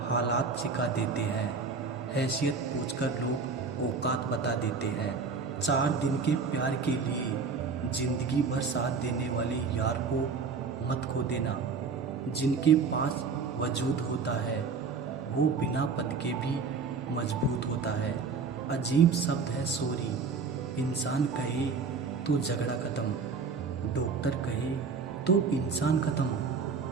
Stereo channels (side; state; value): left; quieter; 5.0 dB